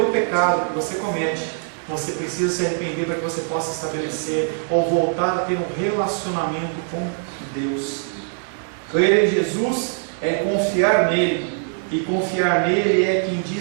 pecado que você comete, você precisa se arrepender para que você possa estabelecer ou voltar a ter um relacionamento com Deus. Crer em Jesus é confiar nele, e confiar nele é quem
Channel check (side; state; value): left; silent; 63 dB below the other